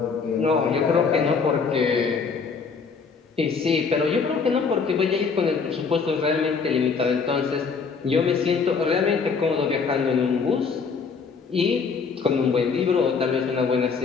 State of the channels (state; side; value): quieter; right; 5.4 dB